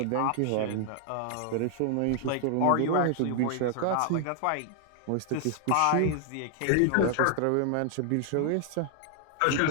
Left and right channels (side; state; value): both; different; correlation 0.00